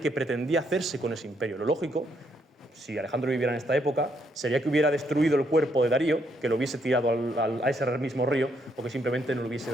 pretendía hacerse con ese imperio. Lo lógico, si Alejandro viviera en esta época, sería que hubiera destruido el cuerpo de Darío, que lo hubiese tirado a ese mismo río, o que simplemente no le hubiese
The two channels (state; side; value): normal; both; correlation 0.74